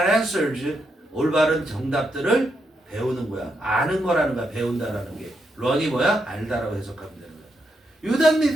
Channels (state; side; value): normal; both; correlation 0.81